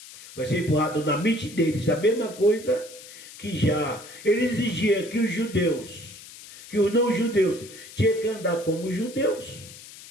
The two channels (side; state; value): left; noise; hiss, 17 dB below the sound